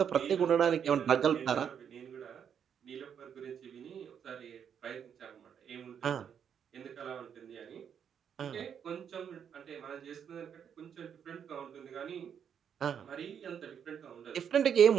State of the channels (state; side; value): quieter; left; 8.0 dB